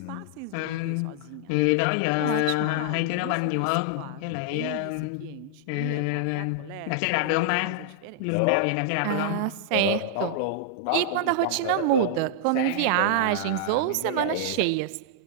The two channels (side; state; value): both; different; correlation -0.01